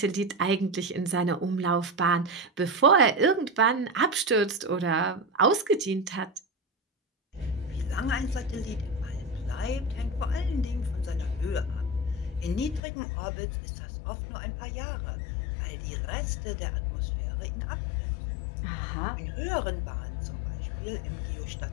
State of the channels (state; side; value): drops out; right; at 12.8 s